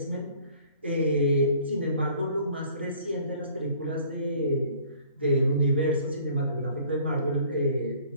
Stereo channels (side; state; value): both; inverted; correlation -0.54